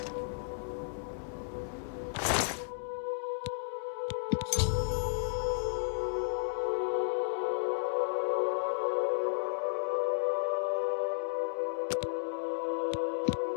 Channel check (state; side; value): silent; right; digital silence